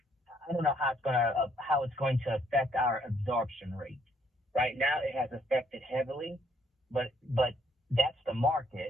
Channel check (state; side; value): normal; both; correlation 0.68